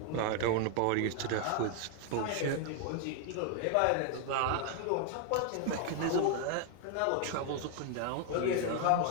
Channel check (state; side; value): different; both; correlation 0.00